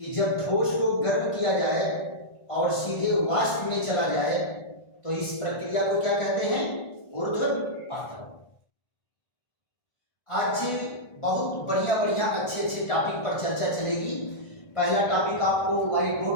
जब ठोस को गर्म किया जाए और सीधे वाष्प में चला जाए तो इस प्रक्रिया को क्या कहते हैं, ऊर्ध्वपातन। आज बहुत बढ़िया बढ़िया अच्छे अच्छे टॉपिक पर चर्चा चलेगी। पहला टॉपिक आपको व्हाइट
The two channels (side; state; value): right; late; 1.5 ms